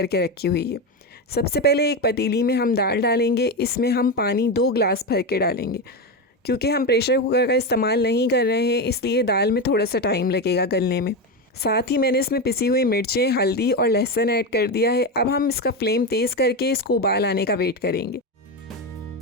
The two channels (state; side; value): normal; both; correlation 0.14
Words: रखी हुई है। सबसे पहले एक पतीली में हम दाल डालेंगे। इसमें हम पानी 2 गिलास भर के डालेंगे। क्योंकि हम प्रेशर कुकर का इस्तेमाल नहीं कर रहे हैं इसलिए दाल में थोड़ा सा टाइम लगेगा गलने में। साथ ही मैंने इसमें पिसी हुई मिर्चें, हल्दी और लहसुन ऐड कर दिया है। अब हम इसका फ्लेम तेज़ करके इसको उबाल आने का वेट करेंगे।